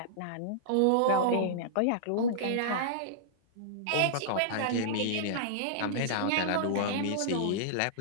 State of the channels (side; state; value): both; different; correlation -0.02